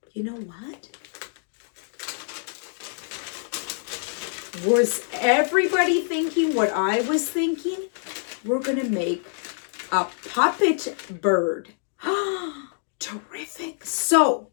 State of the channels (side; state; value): right; silent; digital silence